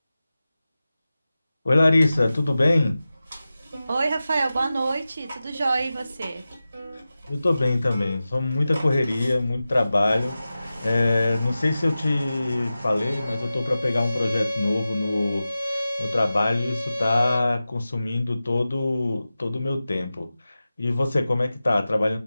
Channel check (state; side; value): inverted; both; correlation -0.95